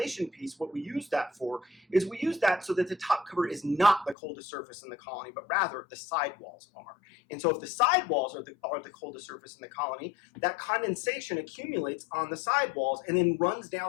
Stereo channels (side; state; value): right; drops out; at 4.2 s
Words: piece, what we use that for is we use that so that the top cover is not the coldest surface in the colony, but rather the sidewalls are. And so if the sidewalls are the coldest surface in the colony, that condensation accumulates on the sidewalls and then runs